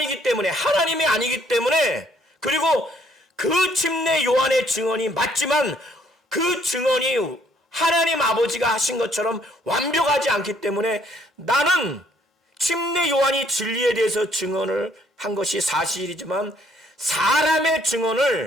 때문에 하나님이 아니기 때문에 그리고 그 침례 요한의 증언이 맞지만 그 증언이 하나님 아버지가 하신 것처럼 완벽하지 않기 때문에 나는 침례 요한이 진리에 대해서 증언을 한 것이 사실이지만 사람의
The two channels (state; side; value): normal; both; correlation 0.65